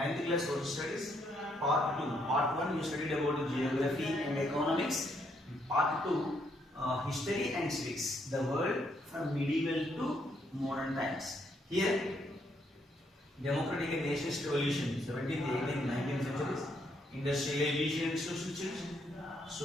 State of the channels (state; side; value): normal; both; correlation 0.73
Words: class social studies. Part 2. Part 1 you studied about geography and economics. Part 2 history and civics. The world from medieval to modern times. Here democratic and nationalist revolution, 17th, 18th, 19th centuries. Industrialization and social change.